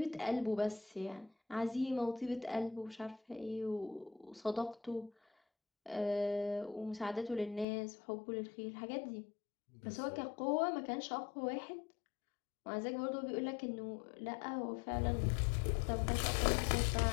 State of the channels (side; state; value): right; drops out; at 7.7 s